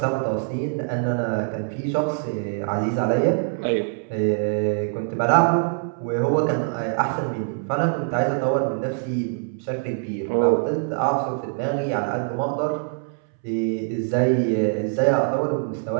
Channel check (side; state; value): left; silent; 63 dB below the other